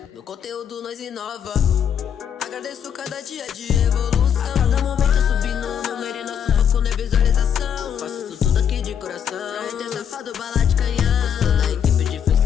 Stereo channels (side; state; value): right; quieter; 8.3 dB